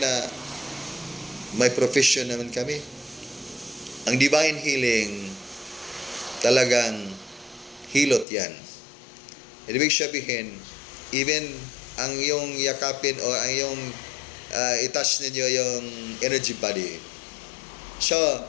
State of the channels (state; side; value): drops out; right; at 8.2 s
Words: na may profession naman kami. Ang divine healing, talagang hilot yan. Ibig sabihin, even ang iyong yakapin o ang iyong i-touch ninyo yung energy body. So,